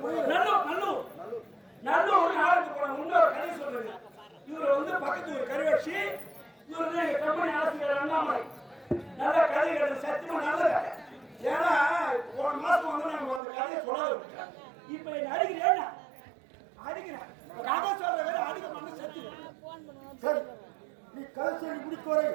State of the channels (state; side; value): drops out; left; at 13.4 s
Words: நல்லூர் நாடகத்துக்கு போன இன்னொரு கதை சொல்றேன். இவர் வந்து பக்கத்து ஒரு கருவச்சி இவர் வந்து எங்க கம்பெனி ஆசிரியர் அண்ணாமலை நல்ல கதை கிடையாது சத்தியமா நல்ல கதை. ஏன்னா போன மாசம் வந்து நம்ம அந்த கதையை சொல்லாத இப்ப என்ன அடிக்கிறேன் அடிக்கிறேன் கதை சொல்ற வேலை அடிக்க மாட்டேன் சத்தியம். சரி நீ கதை சொல்லி முடிக்கோரை